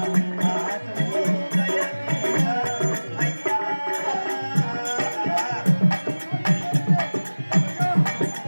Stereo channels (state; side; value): inverted; both; correlation -1.00